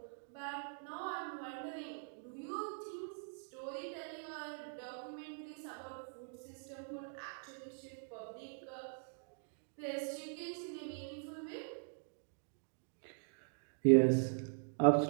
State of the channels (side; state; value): left; silent; digital silence